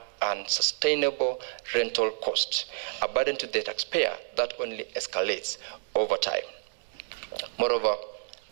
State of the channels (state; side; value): silent; left; digital silence